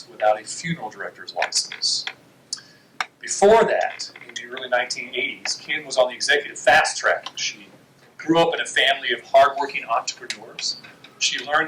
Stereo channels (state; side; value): identical; both; correlation 1.00